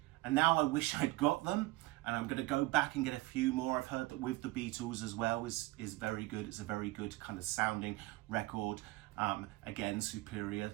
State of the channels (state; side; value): quieter; left; 19.6 dB